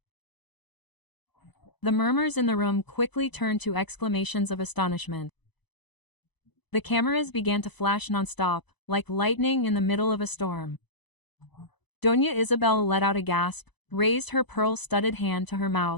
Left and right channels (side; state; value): right; late; 0.99 ms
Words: The murmurs in the room quickly turned to exclamations of astonishment. The cameras began to flash nonstop, like lightning in the middle of a storm. Doña Isabel let out a gasp, raised her pearl-studded hand to her